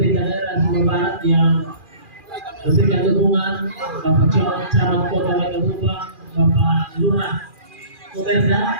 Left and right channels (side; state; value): left; late; 2.4 ms